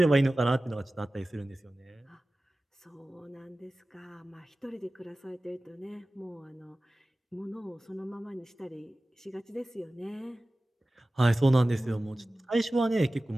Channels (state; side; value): normal; both; correlation 0.96